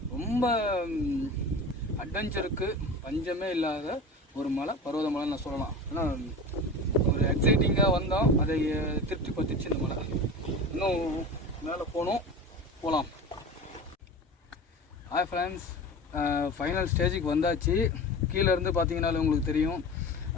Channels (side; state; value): both; normal; correlation 0.32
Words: ரொம்ப அட்வென்ச்சருக்கு பஞ்சமே இல்லாத ஒரு மலை, பருவதமலைன்னு நான் சொல்லலாம். ஆனால் ஒரு எக்ஸைட்டிங்காக வந்தோம், அதை திருப்தி பற்றிச்சு இந்த மலை. இன்னும் மேலே போகலாம். ஹாய் ஃப்ரெண்ட்ஸ், ஃபைனல் ஸ்டேஜுக்கு வந்தாச்சு. கீழே இருந்து பார்த்தீங்கன்னாலும் உங்களுக்கு தெரியும்.